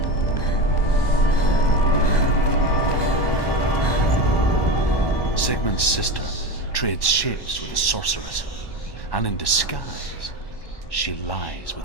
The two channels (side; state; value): right; late; 1.2 ms